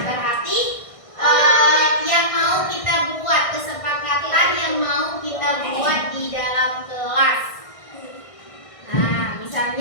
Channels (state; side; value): late; right; 1.6 ms